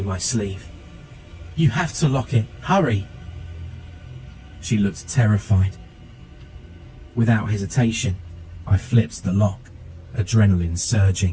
my sleeve. "You have to lock it, hurry." She looked terrified. Without hesitation, I flipped the lock, adrenaline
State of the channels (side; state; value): both; identical; correlation 1.00